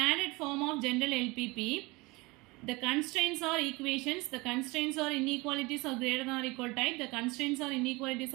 form of general LPP, the constraints are equations, the constraints are inequalities of greater than or equal type, the constraints are inequalities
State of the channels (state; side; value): quieter; left; 23.9 dB